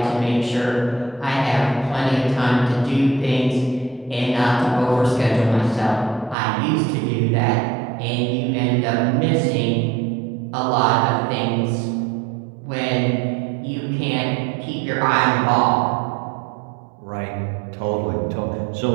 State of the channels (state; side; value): drops out; left; at 6.4 s